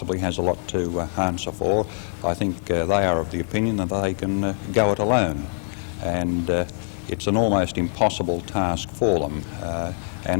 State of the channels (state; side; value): silent; right; digital silence